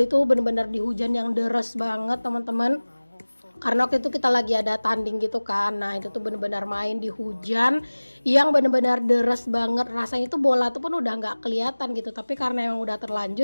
itu bener-bener di hujan yang deres banget teman-teman. Karena waktu itu kita lagi ada tanding gitu kan. Nah itu tuh bener-bener main di hujan yang bener-bener deres banget. Rasanya tuh bola tuh pun udah nggak kelihatan gitu. Tapi karena emang udah terlanjur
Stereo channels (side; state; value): both; inverted; correlation -1.00